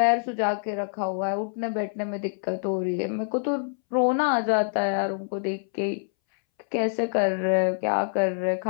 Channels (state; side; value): silent; right; 61 dB below the other